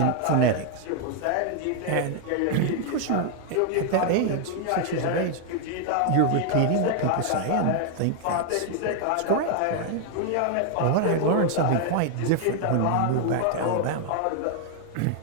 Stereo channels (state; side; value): different; both; correlation 0.00